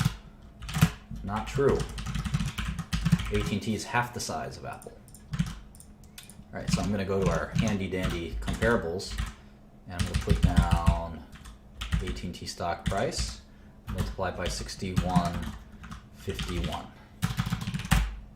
Not true. AT&T is half the size of Apple. All right, so I'm going to go to our handy-dandy comparables, and I'm going to put down AT&T stock price, multiplied by 61.51.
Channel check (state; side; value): identical; both; correlation 1.00